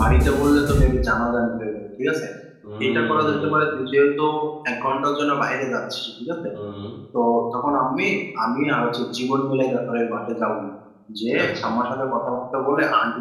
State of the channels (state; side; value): identical; both; correlation 1.00